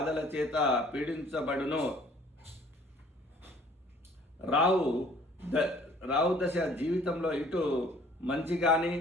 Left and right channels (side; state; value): both; normal; correlation 0.55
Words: చేత పీడించబడును. రావు దశ జీవితంలో ఇటు మంచి కానీ